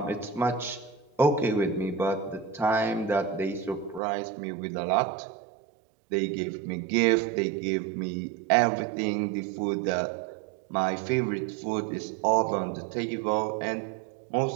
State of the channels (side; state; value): left; drops out; at 4.0 s